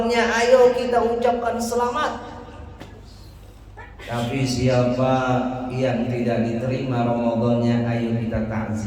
ayo kita ucapkan selamat. Tapi siapa yang tidak diterima Ramadannya, ayo kita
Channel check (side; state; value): both; identical; correlation 1.00